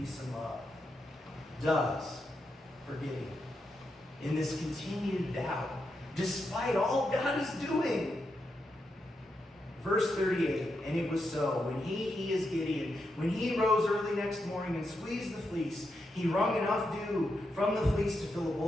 and love, does for Gideon in this continued doubt, despite all God is doing. Verse 38, "And it was so, when he is Gideon, when he rose early next morning and squeezed the fleece, he wrung enough dew from the fleece to fill a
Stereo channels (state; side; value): normal; both; correlation 0.84